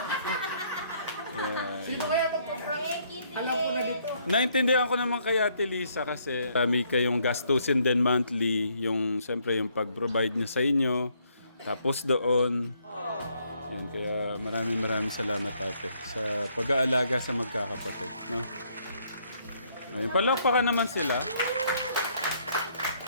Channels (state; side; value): inverted; both; correlation -0.69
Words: Sino kaya magpa-prank? Alam ko na dito. Naintindihan ko naman kay Ate Lisa kasi may kayong gastusin din monthly, yung siyempre yung pag-provide niya sa inyo. Tapos doon, yun, kaya maraming salamat ate sa pag-aalaga sa magkakapatid, no? Ayun, palakpakan naman sila.